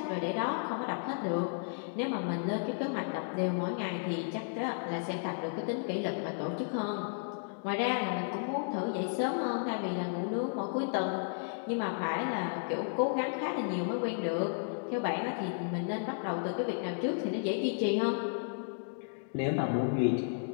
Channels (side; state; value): right; silent; digital silence